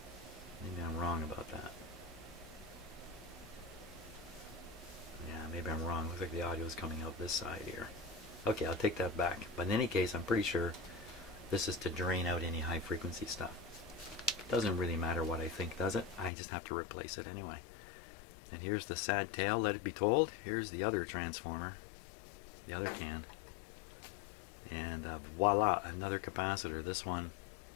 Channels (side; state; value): right; drops out; at 16.3 s